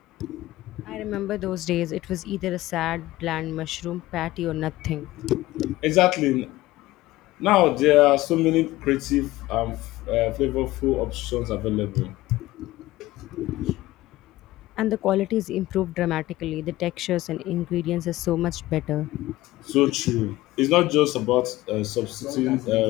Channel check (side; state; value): right; quieter; 17.3 dB